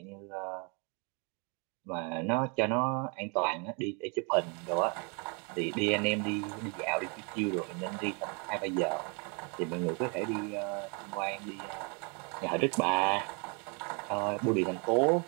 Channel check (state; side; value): quieter; left; 34.7 dB